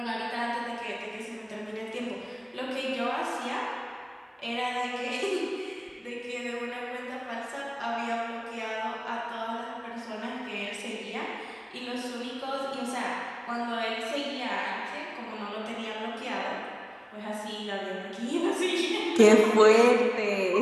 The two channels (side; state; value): both; identical; correlation 1.00